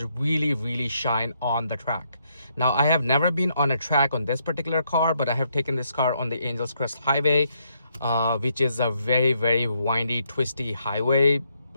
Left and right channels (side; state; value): both; inverted; correlation -0.75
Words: really shine on the track. Now, I have never been on a track on this particular car, but I have taken this car on the Angels Crest Highway, which is a very windy, twisty highway.